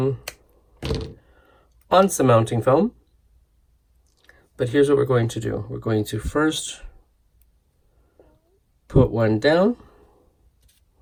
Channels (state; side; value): identical; both; correlation 1.00